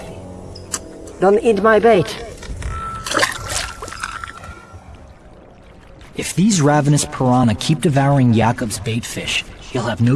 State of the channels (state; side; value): identical; both; correlation 1.00